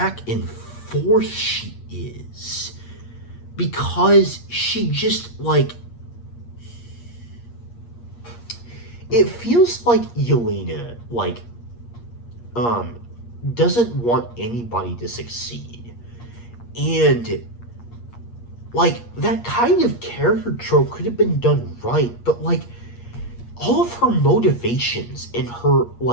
and forth she is, because she just like, it feels like Yelena like doesn't want anybody to succeed. And like that kind of character trope could have been done right, but like all of her motivations and her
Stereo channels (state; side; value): late; right; 8.5 ms